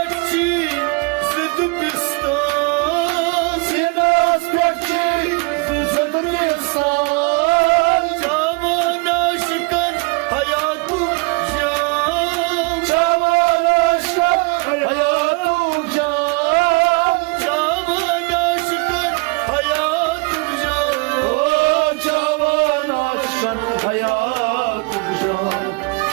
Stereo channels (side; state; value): left; quieter; 30.2 dB